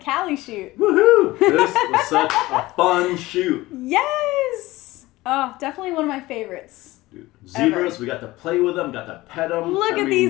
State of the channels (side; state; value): right; quieter; 18.9 dB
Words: shoot. Woohoo! This was such a fun shoot. Yes! Oh, definitely one of my favorites. Dude, zebras, ever. We got to play with them, got to pet them. Look at